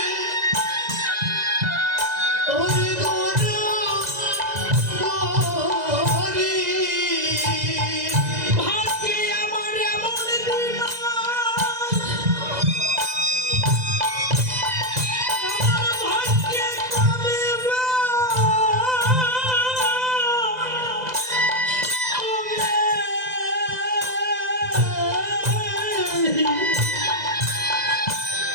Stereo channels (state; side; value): late; left; 2.0 ms